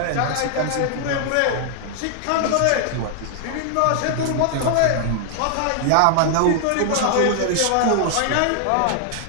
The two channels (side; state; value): both; different; correlation 0.00